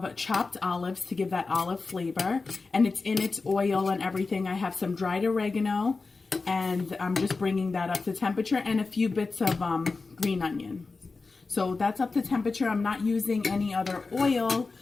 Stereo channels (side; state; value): right; quieter; 4.1 dB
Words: chopped olives to give that olive flavor, and it's in its oil and everything. I have some dried oregano, and I'm just bringing that up to temperature, and a few bits of green onion. So that's up to temperature. I'm not using any other oil,